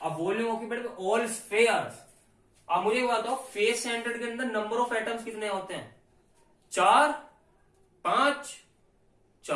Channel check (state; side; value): identical; both; correlation 1.00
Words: अब volume occupied by all spheres. अब मुझे बताओ, face centred के अंदर number of atoms कितने होते हैं? 4, 5,